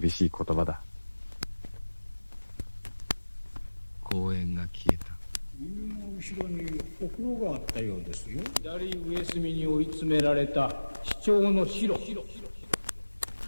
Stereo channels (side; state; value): both; inverted; correlation -1.00